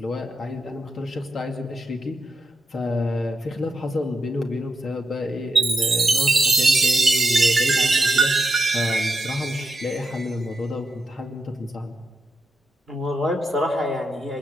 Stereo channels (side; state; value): both; normal; correlation 0.85